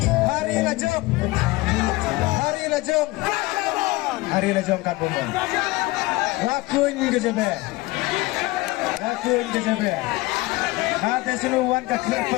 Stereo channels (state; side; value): quieter; right; 21.2 dB